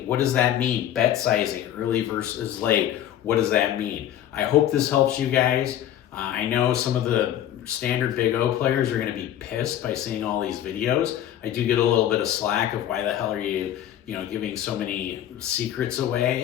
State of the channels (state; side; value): quieter; right; 11.3 dB